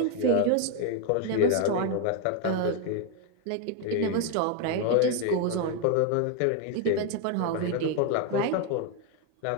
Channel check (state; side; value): different; both; correlation 0.01